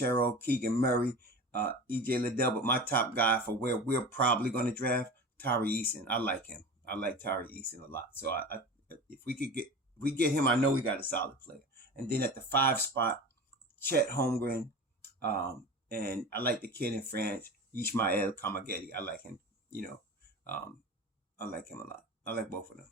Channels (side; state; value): both; normal; correlation 0.32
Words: Keegan Murray, EJ Liddell. But my top guy for where we're probably going to draft, Tari Eason. I like him. I like Tari Eason a lot. So if we get him, I know we got a solid player. And then at the 5 spot, Chet Holmgren, and I like the kid in France, Ishmael Kamagedi. I like him, I like him a lot. I like both of them.